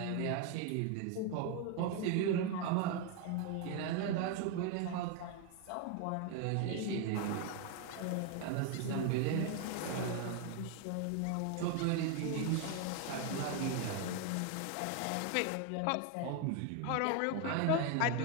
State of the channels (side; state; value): both; different; correlation 0.01